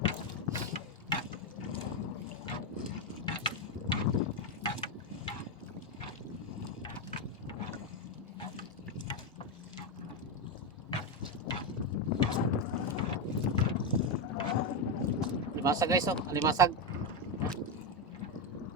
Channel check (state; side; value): normal; both; correlation 0.08